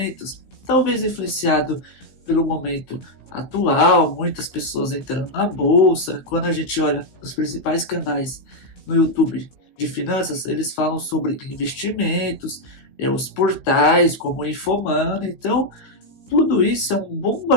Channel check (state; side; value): late; right; 15 ms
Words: Talvez influenciado pelo momento atual, muitas pessoas entrando na bolsa. Quando a gente olha os principais canais no YouTube de finanças, eles falam sobre investimentos, os portais como o Infomani. Então, tudo isso é um